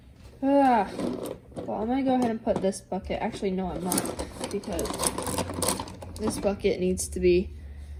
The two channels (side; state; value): both; identical; correlation 1.00